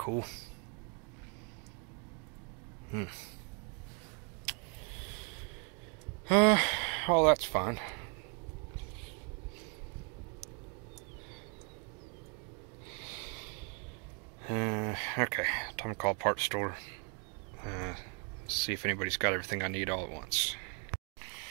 Oh, that's fine. Okay, time to call parts store. See if anybody's got everything I need all at once.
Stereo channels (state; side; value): quieter; left; 37.0 dB